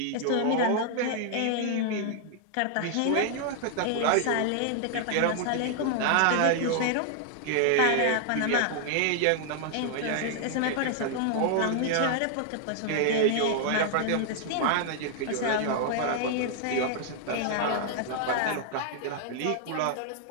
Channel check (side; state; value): both; different; correlation 0.00